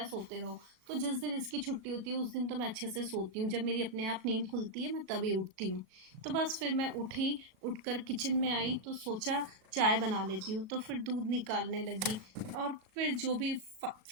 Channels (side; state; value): left; late; 37 ms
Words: सोते रहो। तो जिस दिन इसकी छुट्टी होती है उस दिन तो मैं अच्छे से सोती हूँ, जब मेरी अपने आप नींद खुलती है मैं तभी उठती हूँ। तो बस फिर मैं उठी, उठकर किचन में आई तो सोचा चाय बना लेती हूँ, तो फिर दूध निकालने लगी। और फिर जो भी